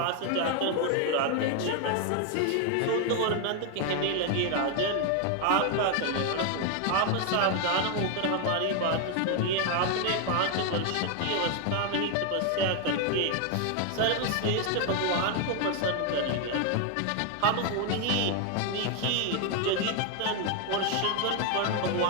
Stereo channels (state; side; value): different; both; correlation 0.01